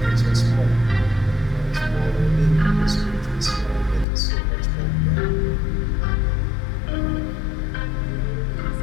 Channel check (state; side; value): drops out; right; at 4.0 s